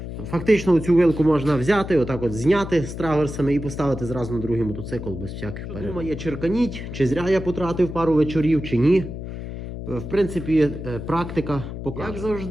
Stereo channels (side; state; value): left; noise; hum, 8 dB below the sound